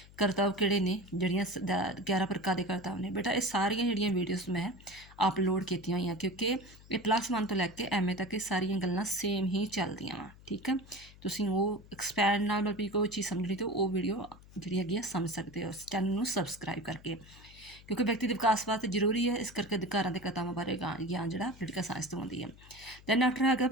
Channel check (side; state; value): left; noise; hum, 21 dB below the sound